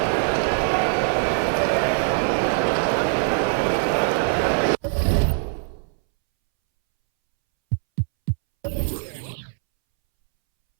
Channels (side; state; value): left; silent; 64 dB below the other